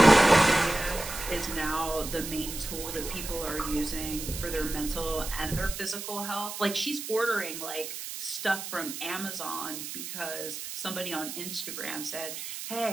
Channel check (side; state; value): right; noise; hiss, 8 dB below the sound